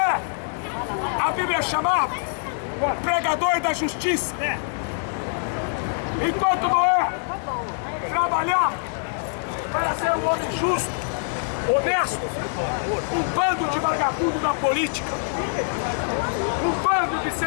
a Bíblia chamava pregador da justiça. Enquanto Noé trabalhava para ser um homem justo, honesto, um bando de vagabundo na política, um bando de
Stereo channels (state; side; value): silent; right; digital silence